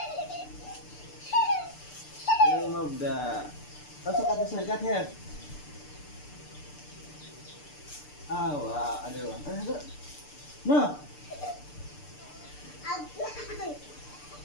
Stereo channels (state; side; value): late; right; 6.8 ms